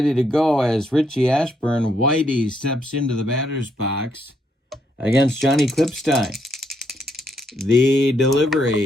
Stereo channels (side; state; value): both; normal; correlation 0.75